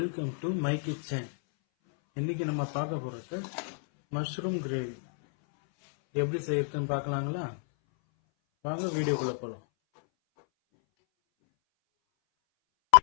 to my kitchen. இன்னைக்கு நம்ம பார்க்க போறது மஷ்ரூம் கிரேவி. எப்படி செய்யறதுன்னு பார்க்கலாங்களா? வாங்க வீடியோக்குள்ள போலாம்.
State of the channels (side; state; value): right; silent; 58 dB below the other